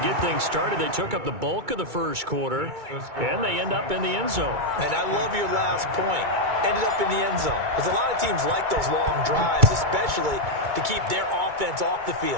things started. They took up the bulk of the first quarter, and they end up in the end zone. And I love your last point. Ended up in the end zone. Because a lot of teams like those long drives, especially to keep their offense off the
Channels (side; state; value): left; late; 2.2 ms